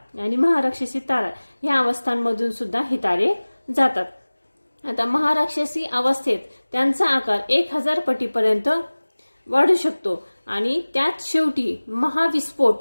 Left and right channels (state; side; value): inverted; both; correlation -1.00